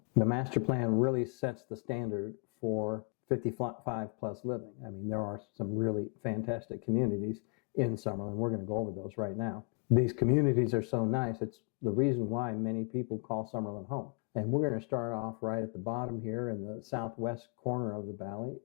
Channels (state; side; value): quieter; right; 37.5 dB